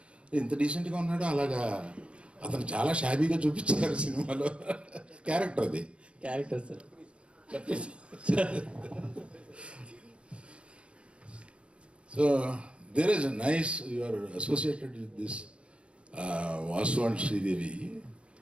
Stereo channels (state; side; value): late; left; 0.059 ms